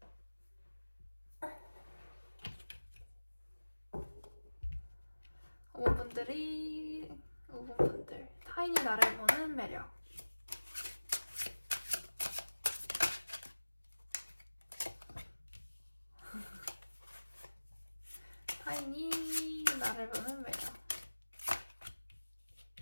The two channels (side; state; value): both; inverted; correlation -1.00